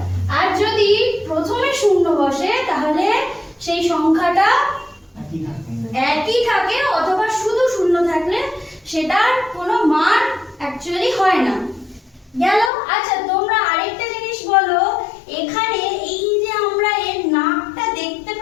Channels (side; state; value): right; drops out; at 12.7 s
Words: আর যদি প্রথমে শূন্য বসে তাহলে সেই সংখ্যাটা একই থাকে, অথবা শুধু শূন্য থাকলে সেটার কোনো মান অ্যাকচুয়ালি হয় না। গেল। আচ্ছা, তোমরা আরেকটা জিনিস বলো, এখানে এই যে আমরা এর নাকটা দেখতে